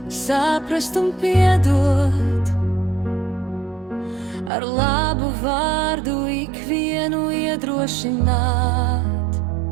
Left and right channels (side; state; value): left; drops out; at 4.5 s